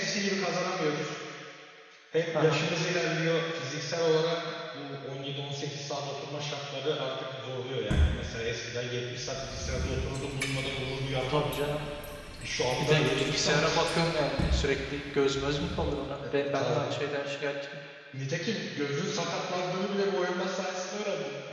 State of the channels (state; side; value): identical; both; correlation 1.00